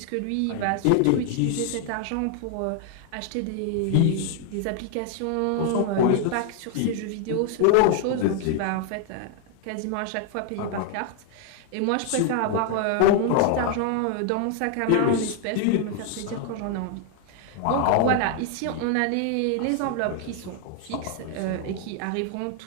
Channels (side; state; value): both; different; correlation 0.00